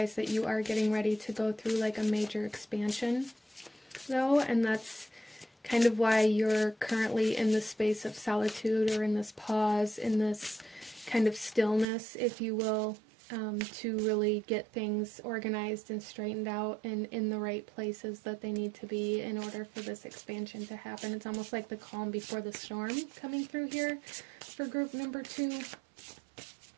that you are getting ready to go through like a major expansion, though, and that's kind of why you're currently in this space of solitude, or in this pause, in this kind of stillness, if you will, to really get things organized and straightened out and in the right places that they need to be in order for this expansion to happen. It's almost like the calm before the storm coming through here for group number 2.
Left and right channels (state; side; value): drops out; left; at 11.9 s